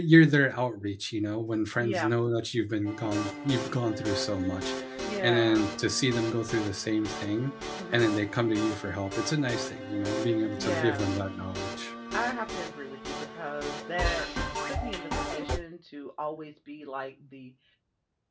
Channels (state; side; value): identical; both; correlation 1.00